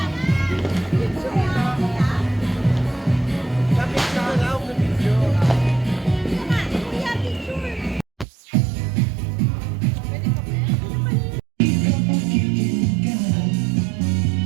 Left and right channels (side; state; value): left; drops out; at 8.2 s